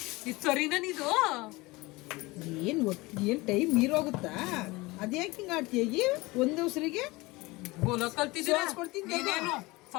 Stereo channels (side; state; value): right; quieter; 22.3 dB